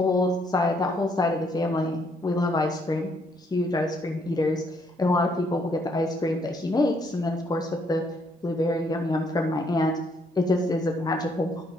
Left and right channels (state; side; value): normal; both; correlation 0.70